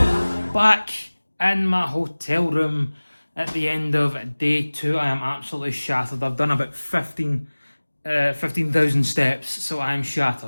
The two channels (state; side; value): inverted; both; correlation -1.00